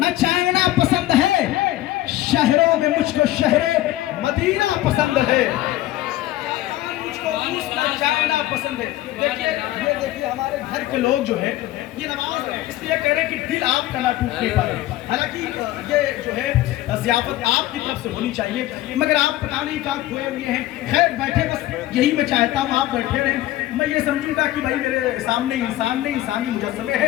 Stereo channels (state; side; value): quieter; right; 15.6 dB